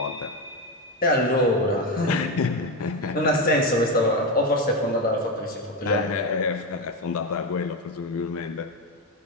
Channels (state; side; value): normal; both; correlation 0.13